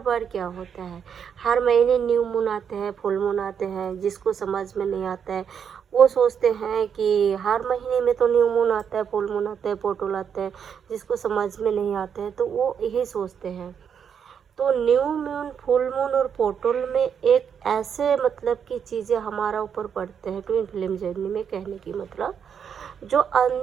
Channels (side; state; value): left; quieter; 7.5 dB